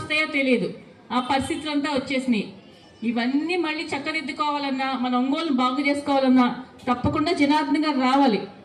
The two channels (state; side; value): identical; both; correlation 1.00